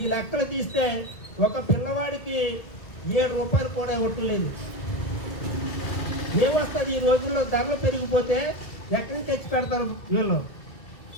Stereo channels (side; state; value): right; late; 2.2 ms